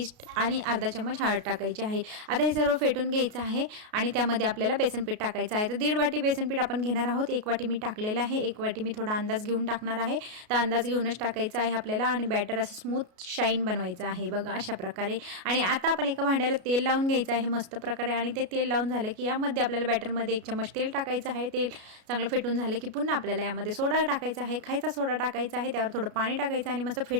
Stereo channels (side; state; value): left; late; 33 ms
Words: आणि अर्धा चम्मच हळद टाकायची आहे. आता हे सर्व फेटून घ्यायचं आहे आणि त्यामध्ये आपल्याला बेसन पीठ टाकायचं आहे. तर 1.5 वाटी बेसन पीठ आपण घेणार आहोत. 1 वाटी मी टाकलेलं आहे. 1 वाटी मी थोडा अंदाज घेऊन टाकणार आहे. तर अंदाज घेऊनच टाकायचं आहे आपल्याला आणि बॅटर असं स्मूथ शाईन बनवायचं आहे बघा अशा प्रकारे. आणि आता आपण एका भांड्याला तेल लावून घ्यायचं आहे मस्त प्रकारे आणि ते तेल लावून झालं की यामध्ये आपल्याला बॅटरमध्ये 1 चम्मच तेल टाकायचं आहे. तेल चांगलं फेटून झालं की पुन्हा आपल्याला यामध्ये सोडा टाकायचा आहे. खायचा सोडा टाकायचा आहे. त्यावर थोडं पाणी टाकायचं आणि मस्त